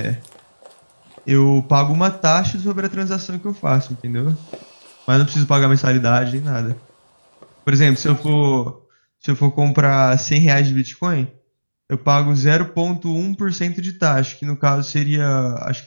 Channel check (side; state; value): both; inverted; correlation -1.00